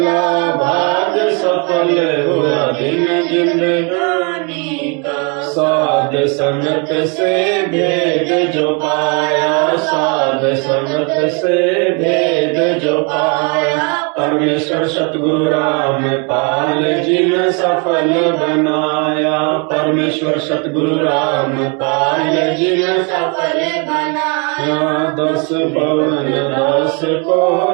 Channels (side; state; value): left; quieter; 34.1 dB